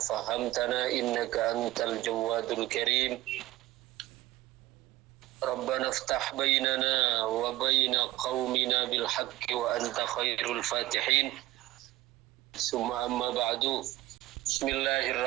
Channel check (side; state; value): left; quieter; 16.8 dB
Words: innaka antal jawadul karim. Rabbana iftah bainana wa baina qaumina bil haqqi wa anta khairul fatihin. Summa amma ba'du.